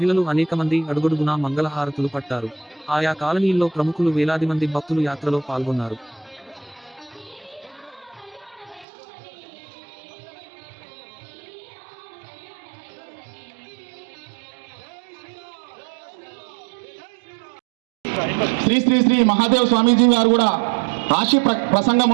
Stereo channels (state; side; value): drops out; left; at 8.8 s